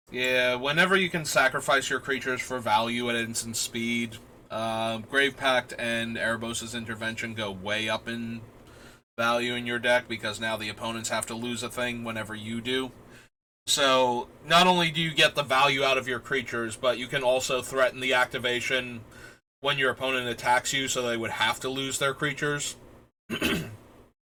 Yeah, whenever you can sacrifice your creatures for value at instant speed, Grave Pact and Erebos' Intervention go way up in value in your deck because now the opponents have to lose a thing whenever you do. So, not only do you get the value out of your creatures, but you can also threaten the activation when your opponent attacks you, so they would have to lose their creatures.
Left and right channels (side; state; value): both; identical; correlation 1.00